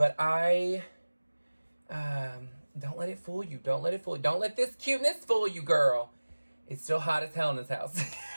I don't let it fool you. Don't let it fool you. Don't let this cuteness fool you, girl. It's still hot as hell in this house.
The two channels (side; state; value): both; inverted; correlation -1.00